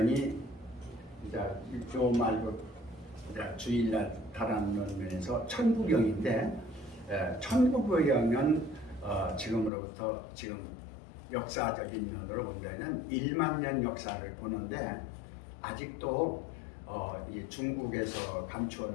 이제 요 말고 주일날 다루는 면에서 천부경인데, 천부경은 지금으로부터 지금 역사적인 면으로 본다면 1만 년 역사를 보는데 아직도 이 중국에서 감추어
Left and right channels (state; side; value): drops out; right; at 9.7 s